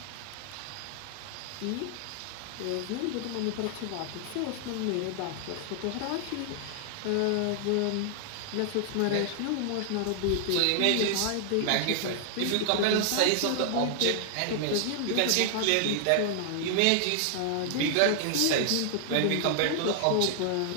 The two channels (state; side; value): different; both; correlation 0.00